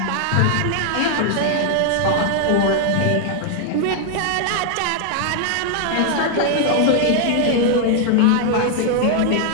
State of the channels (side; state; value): both; different; correlation 0.00